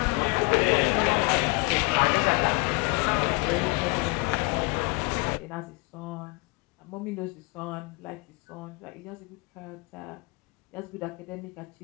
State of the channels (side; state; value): right; quieter; 28.9 dB